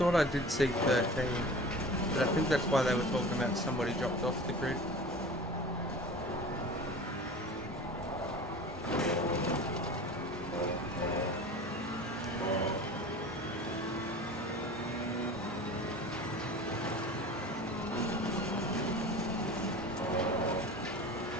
I did see 13, but I think that's why they were talking about somebody dropped off the grid.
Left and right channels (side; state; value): both; normal; correlation 0.38